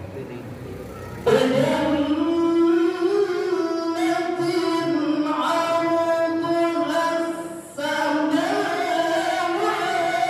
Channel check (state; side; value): identical; both; correlation 1.00